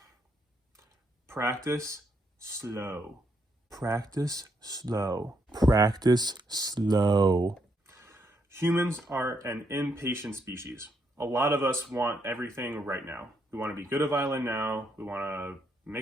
Practice slow. Practice slow. Practice slow. Humans are an impatient species. A lot of us want everything right now. We want to be good at violin now. We want to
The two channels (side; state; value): both; normal; correlation 0.76